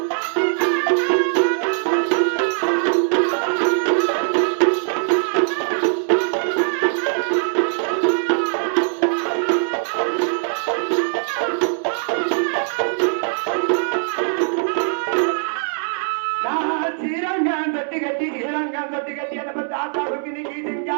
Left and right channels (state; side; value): silent; left; digital silence